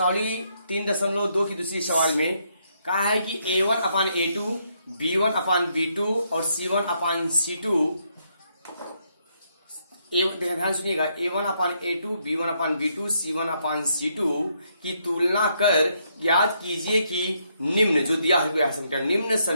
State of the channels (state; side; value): inverted; both; correlation -0.75